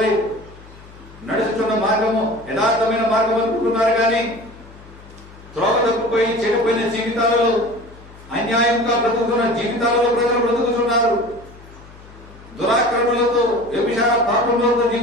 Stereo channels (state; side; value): noise; left; hum, 21 dB below the sound